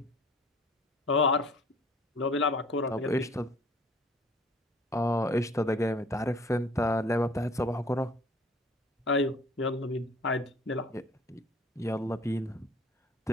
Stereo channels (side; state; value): both; normal; correlation 0.51